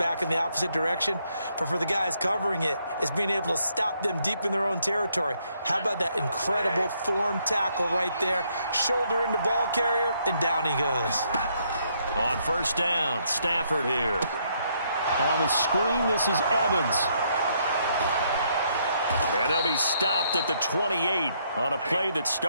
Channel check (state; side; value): inverted; both; correlation -0.72